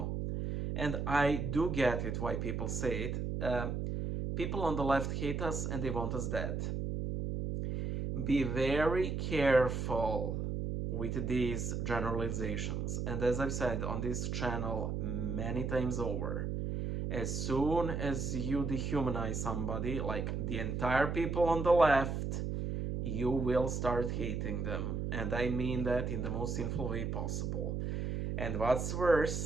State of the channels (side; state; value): right; noise; hum, 2 dB below the sound